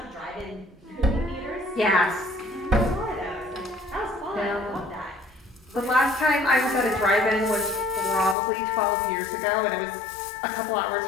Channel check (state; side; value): drops out; right; at 8.3 s